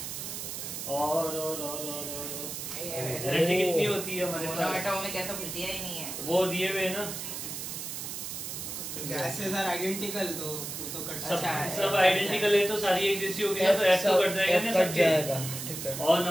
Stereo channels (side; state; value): right; noise; hiss, 6 dB below the sound